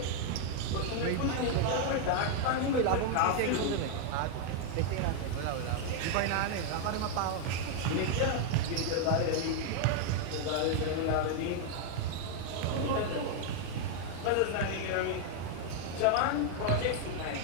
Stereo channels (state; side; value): different; both; correlation 0.00